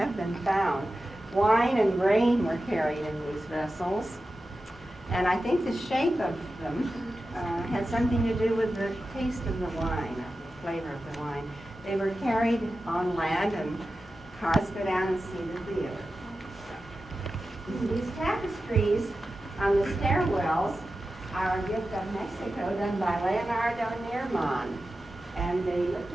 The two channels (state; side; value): normal; both; correlation 0.93